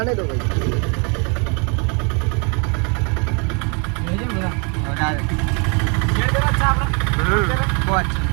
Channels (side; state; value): left; quieter; 34.4 dB